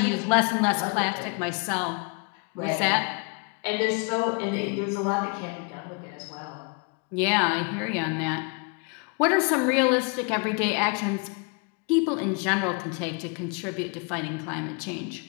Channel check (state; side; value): quieter; right; 33.6 dB